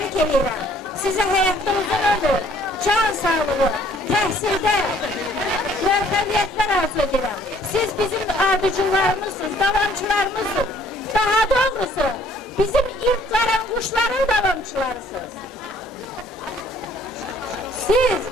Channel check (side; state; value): both; normal; correlation 0.59